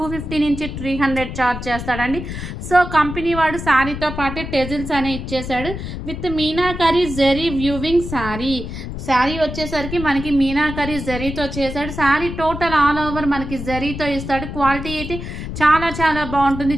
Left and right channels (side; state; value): left; noise; rumble, 7 dB below the sound